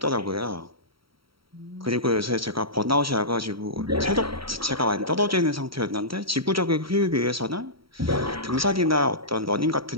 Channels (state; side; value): late; left; 0.75 ms